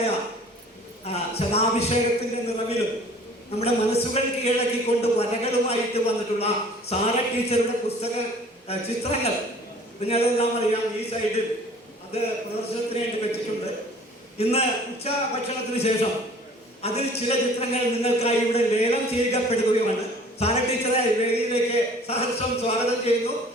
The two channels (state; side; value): normal; both; correlation 0.50